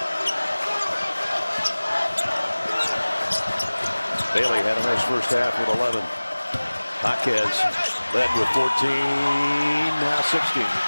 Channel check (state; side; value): inverted; both; correlation -1.00